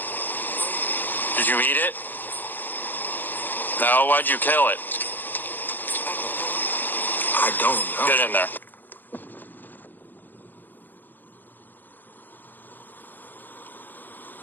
Did you eat it? No, why'd you kill it? I don't know. Get in there.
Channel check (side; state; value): right; late; 0.089 ms